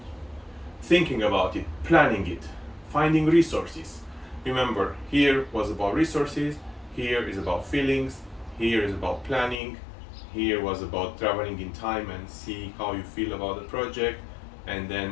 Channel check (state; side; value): drops out; right; at 9.6 s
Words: thinking about it, planning it, finding resources. Remember, here was about resources, here is about feelings, here is about planning, here was about traveling in time and see how you feel about the project, and